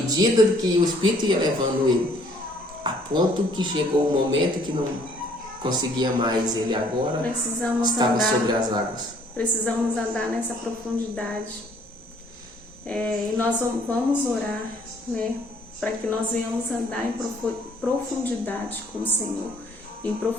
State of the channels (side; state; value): both; normal; correlation 0.61